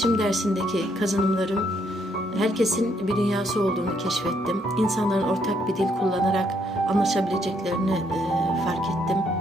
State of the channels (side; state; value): both; normal; correlation 0.72